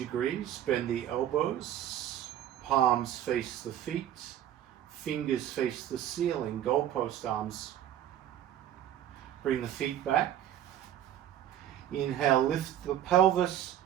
bend the elbows, palms face the feet, fingers face the ceiling, goalpost arms. Bring the feet back. Inhale, lift the pelvis,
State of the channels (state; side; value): quieter; left; 11.2 dB